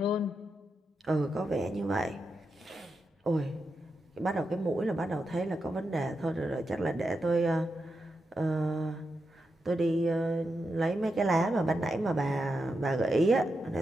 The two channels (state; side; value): normal; both; correlation 0.87